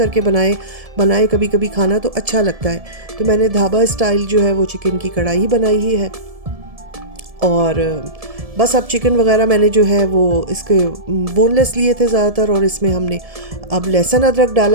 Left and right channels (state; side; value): late; left; 1.7 ms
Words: बनाए कभी कभी खाना तो अच्छा लगता है। तो मैंने ढाबा स्टाइल जो है वो चिकन की कढ़ाई ही बनाई ही है। और बस अब चिकन वगैरह मैंने जो है वो इसके बोनलेस लिए थे ज़्यादातर, और इसमें हमने अब लहसुन अदरक